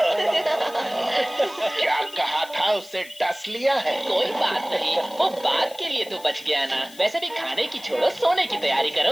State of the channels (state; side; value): noise; left; hiss, 19 dB below the sound